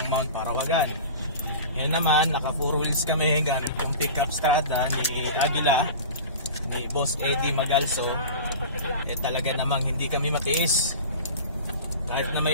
Mount Parawagan. Yan naman, naka 4 wheels kami gamit yung pickup strada ni Agila, ni Boss Eddie Magalso. Talaga namang hindi kami matiis. Kahit na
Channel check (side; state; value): both; inverted; correlation -0.35